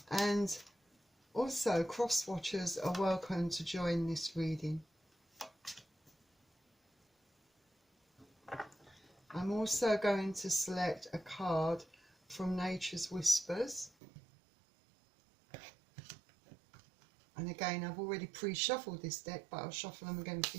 And also cross-watchers are welcome to join this reading. I'm also going to select a card from Nature's Whispers. And again, I've already pre-shuffled this deck, but I'll shuffle them again for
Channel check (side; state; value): left; drops out; at 13.9 s